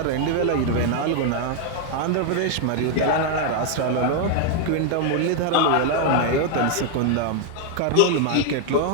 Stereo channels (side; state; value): both; different; correlation 0.00